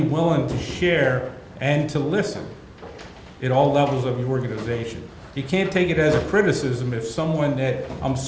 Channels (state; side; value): identical; both; correlation 1.00